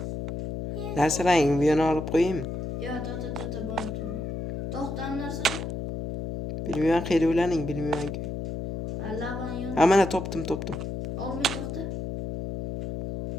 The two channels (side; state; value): left; noise; hum, 5 dB below the sound